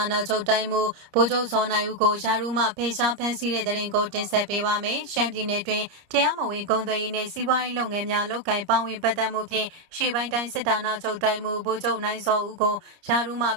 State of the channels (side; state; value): left; late; 30 ms